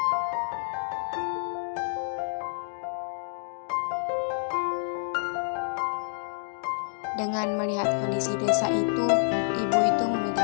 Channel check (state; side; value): silent; right; digital silence